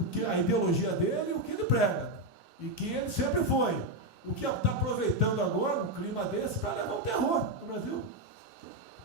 ideologia dele e o que ele prega. E que ele sempre foi. O que está aproveitando agora, um clima desse, para levar um terror no Brasil.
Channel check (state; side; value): normal; both; correlation 0.05